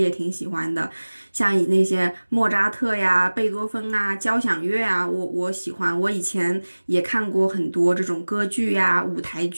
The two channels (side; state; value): both; inverted; correlation -1.00